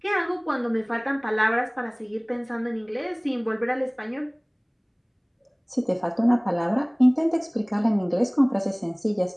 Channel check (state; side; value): identical; both; correlation 1.00